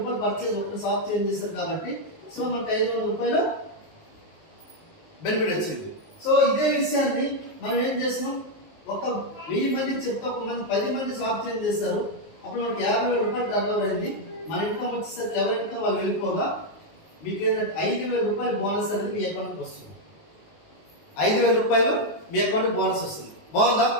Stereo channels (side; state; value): right; late; 19 ms